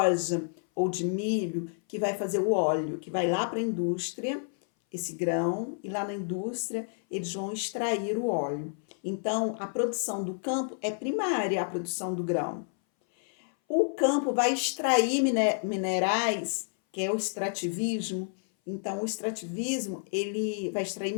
ou de milho que vai fazer o óleo, que vai lá para a indústria, esse grão, e lá na indústria eles vão extrair o óleo. Então, a produção do campo é primária, a produção do grão. O campo vai extrair minerais, que é o extrativismo. Então, o extrativismo, ele vai extrair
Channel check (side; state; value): right; silent; 58 dB below the other